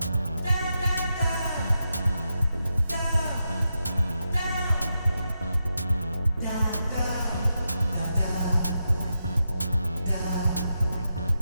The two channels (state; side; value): inverted; both; correlation -0.87